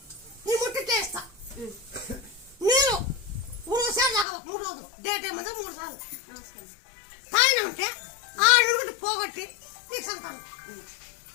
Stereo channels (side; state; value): right; drops out; at 4.2 s